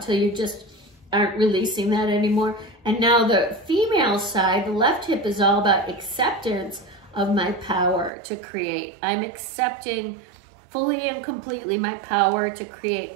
you just aren't releasing that anymore. And now the female side, the left hip, is all about acceptance of my power to create. I'm accepting fully and completely my power to create.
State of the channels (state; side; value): drops out; left; at 8.1 s